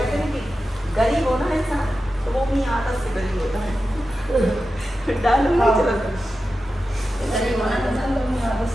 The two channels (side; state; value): both; normal; correlation 0.92